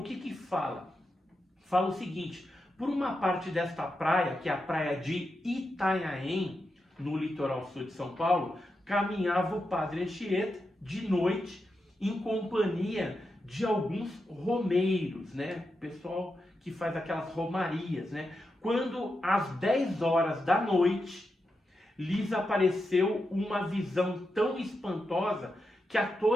que fala? Fala o seguinte: por uma parte desta praia, que é a praia de Itanhaém, no litoral sul de São Paulo, caminhava o padre Anchieta de noite em companhia de alguns romeiros, né? Pessoal que faz aquelas romarias, né? Quando às 10 horas da noite lhes apareceu uma visão tão espantosa que a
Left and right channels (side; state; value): both; normal; correlation 0.87